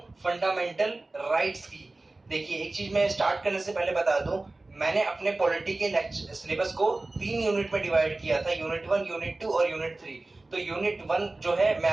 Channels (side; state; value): left; quieter; 3.1 dB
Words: फंडामेंटल राइट्स की। देखिए, एक चीज मैं स्टार्ट करने से पहले बता दूं, मैंने अपने पॉलिटी के सिलेबस को 3 यूनिट में डिवाइड किया था, यूनिट 1, यूनिट 2 और यूनिट 3। तो यूनिट 1 जो है मैं